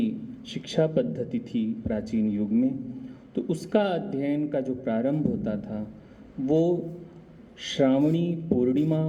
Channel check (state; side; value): identical; both; correlation 1.00